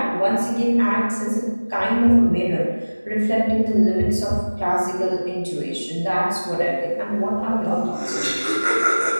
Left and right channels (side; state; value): both; inverted; correlation -1.00